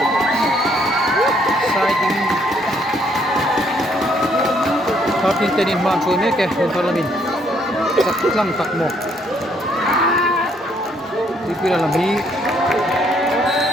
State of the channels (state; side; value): normal; both; correlation 0.68